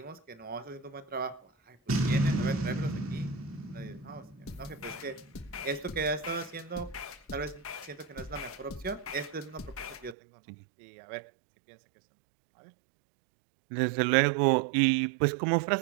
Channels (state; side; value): drops out; left; at 10.2 s